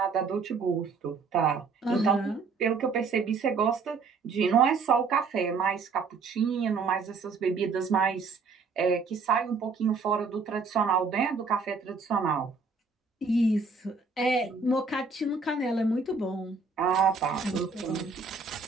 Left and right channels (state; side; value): quieter; left; 4.7 dB